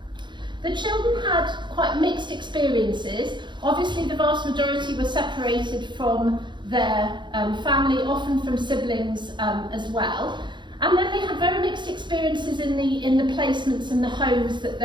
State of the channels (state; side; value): late; left; 0.22 ms